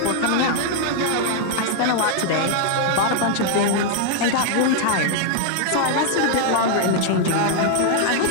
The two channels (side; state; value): both; different; correlation 0.00